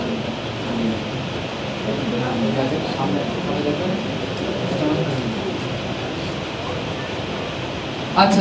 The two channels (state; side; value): identical; both; correlation 1.00